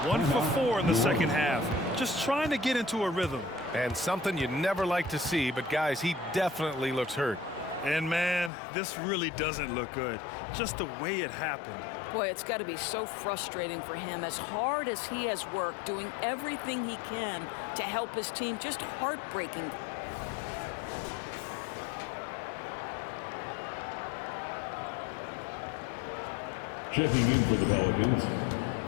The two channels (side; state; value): right; drops out; at 8.5 s